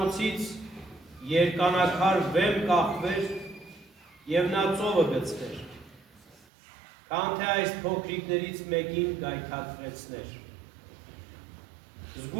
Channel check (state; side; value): drops out; left; at 6.5 s